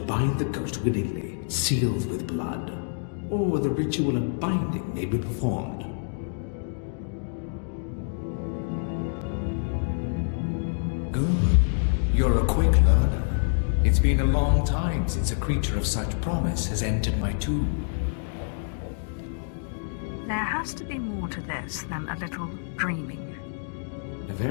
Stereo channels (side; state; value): right; silent; digital silence